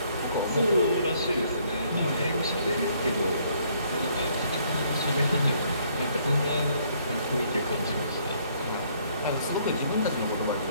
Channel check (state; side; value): inverted; both; correlation -0.66